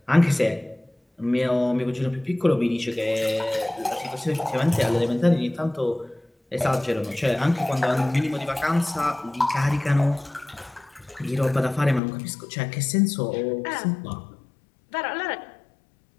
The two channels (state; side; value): drops out; right; at 12.0 s